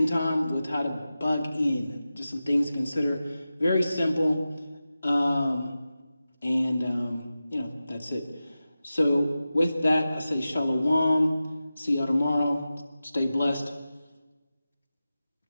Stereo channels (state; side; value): inverted; both; correlation -0.94